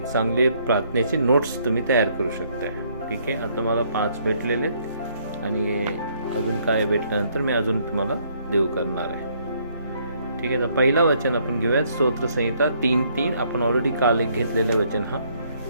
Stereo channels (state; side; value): inverted; both; correlation -0.68